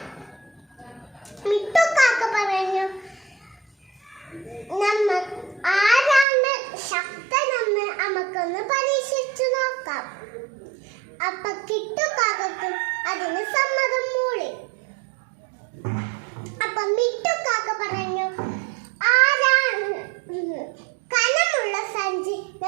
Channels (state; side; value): drops out; left; at 6.2 s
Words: മിട്ടുക്കാക്ക പറഞ്ഞു, ആരാണ് ശക്തനെന്ന് നമുക്കൊന്ന് പരീക്ഷിച്ചു നോക്കാം. അപ്പൊ കിട്ടുകാക്കും അതിന് സമ്മതം മൂളി. അപ്പൊ മിട്ടുകാക്ക പറഞ്ഞു, ആരാണ് കനമുള്ള സഞ്ചി